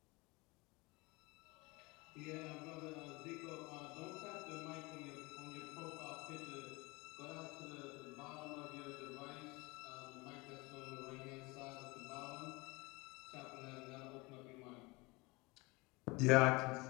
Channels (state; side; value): quieter; right; 24.7 dB